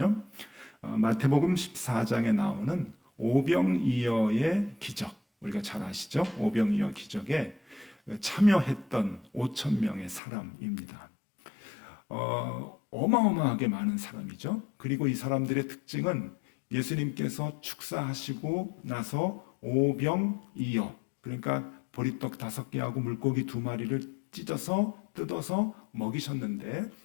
마태복음 14장에 나오는 오병이어의 기적, 우리가 잘 아시죠? 오병이어 기적에 참여했던 5,000명의 사람입니다. 어마어마하게 많은 사람이죠. 그리고 이 사람들의 특징은 예수님께서 축사하시고 나서 오병이어, 그러니까 보리떡 5개하고 물고기 2마리를 찢어서 뜯어서 먹이셨는데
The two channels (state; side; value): drops out; right; at 10.2 s